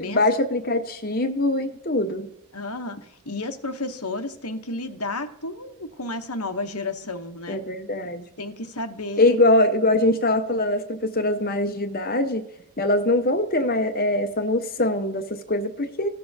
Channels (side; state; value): both; normal; correlation -0.06